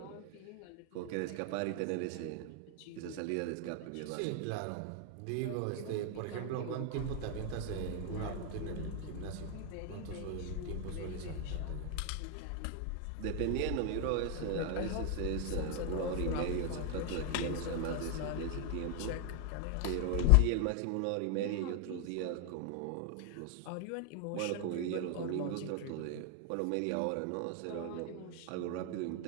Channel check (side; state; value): both; different; correlation 0.00